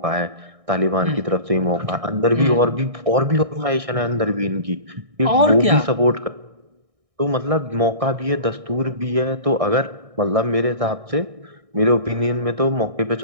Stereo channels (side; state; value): left; late; 1.6 ms